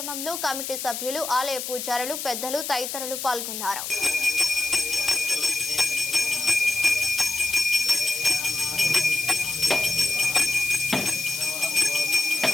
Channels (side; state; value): left; noise; hiss, 6 dB below the sound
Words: కమిటీ సభ్యులు, ఆలయ పూజారులు, పెద్దలు తదితరులు పాల్గొన్నారు.